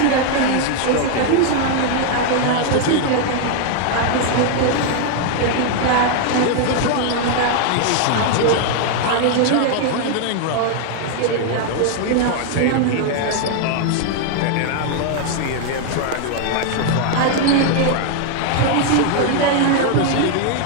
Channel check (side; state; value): both; different; correlation 0.00